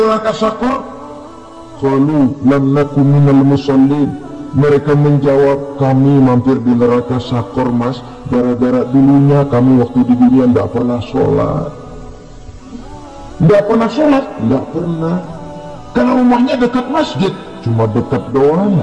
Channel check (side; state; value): both; identical; correlation 1.00